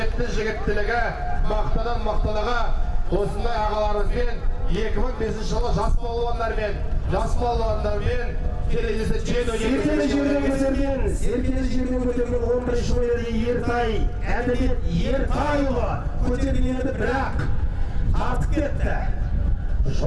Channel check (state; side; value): identical; both; correlation 1.00